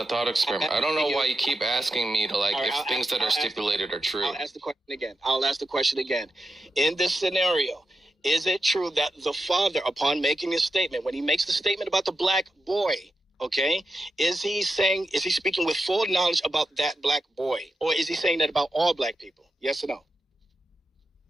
thought experiment. I don't know why you keep asking me to if things that are stipulated are true. I'll ask the question again. In this scenario, is it true that the father, upon making his statement, when he makes the statement about the black boy, okay, is he speaking with full knowledge about that black boy, or is he saying that about all black people? Yes or no?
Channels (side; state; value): both; normal; correlation 0.88